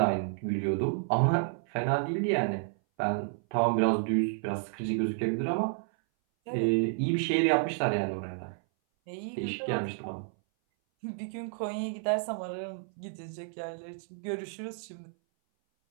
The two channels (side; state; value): left; silent; 57 dB below the other